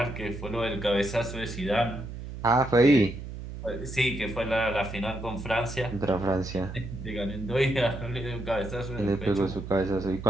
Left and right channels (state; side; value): noise; right; hum, 9 dB below the sound